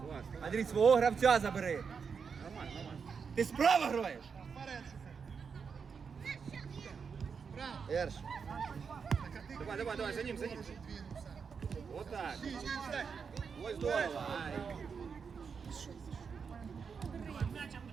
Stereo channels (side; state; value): left; quieter; 6.0 dB